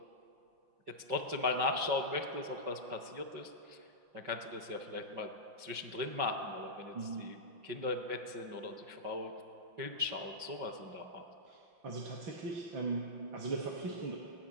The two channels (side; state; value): left; late; 5.3 ms